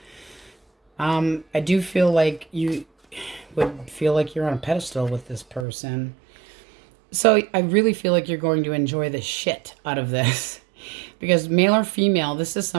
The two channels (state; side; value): drops out; left; at 5.7 s